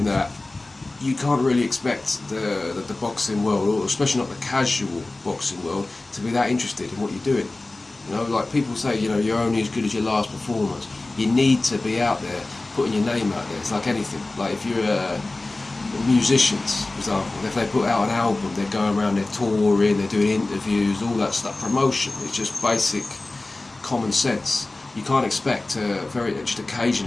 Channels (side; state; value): right; quieter; 3.0 dB